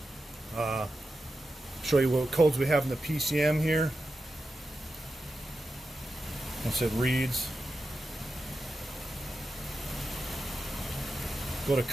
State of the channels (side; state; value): both; normal; correlation 0.90